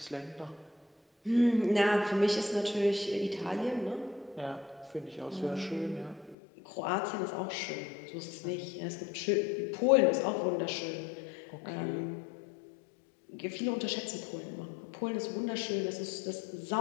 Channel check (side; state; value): right; drops out; at 6.4 s